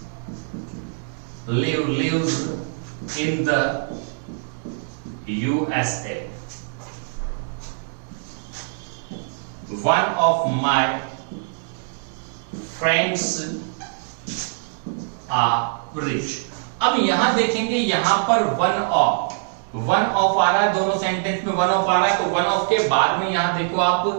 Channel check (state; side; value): silent; left; digital silence